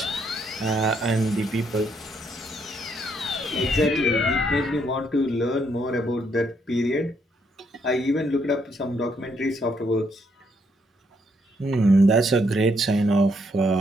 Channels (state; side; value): normal; both; correlation 0.73